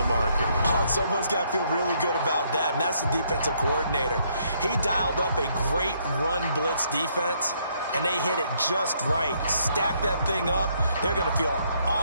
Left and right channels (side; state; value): both; inverted; correlation -0.71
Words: marker. Oh, and someone's got to feel really good about that, and that's the defensive coordinator. He dialed up a great run blitz defense, and they hit it just right. Stack that thing up. They're going to feel